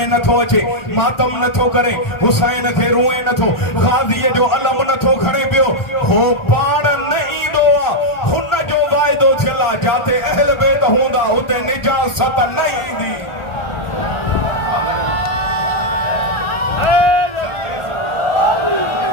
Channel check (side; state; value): right; late; 1.4 ms